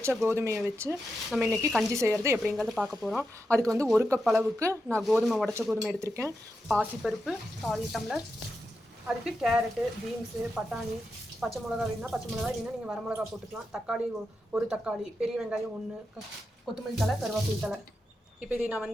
கோதுமையை வச்சு நம்ம இன்னைக்கு கஞ்சி செய்யறது எப்படிங்கறத பார்க்க போறோம். அதுக்கு வந்து 1 கப் அளவுக்கு நான் உடைச்ச கோதுமை எடுத்துர்க்கேன். பாசிப்பருப்பு 1/4 டம்ளர். அதுக்கு கேரட், பீன்ஸ், பட்டாணி, பச்சை மிளகாய் வேணும்னா பச்சை மிளகாய் இல்லைன்னா நீங்கள் வரமிளகாய் போட்டுக்கலாம். தக்காளி 1 தக்காளி, பெரிய வெங்காயம் 1, கொத்தமல்லி தழை, கருவேப்பிலை தழை. இப்போ இதை நான்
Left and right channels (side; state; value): both; normal; correlation 0.87